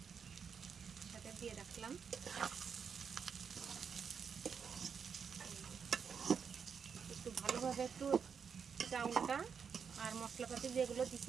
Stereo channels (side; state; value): left; quieter; 6.6 dB